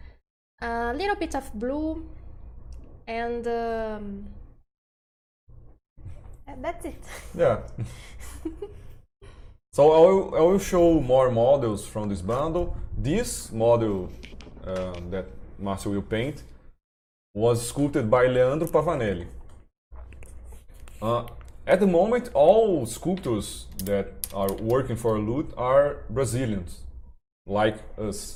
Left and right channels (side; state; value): both; identical; correlation 1.00